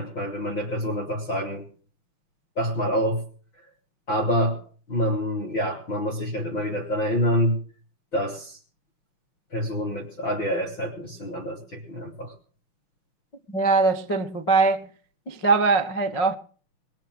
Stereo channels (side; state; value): right; late; 6.0 ms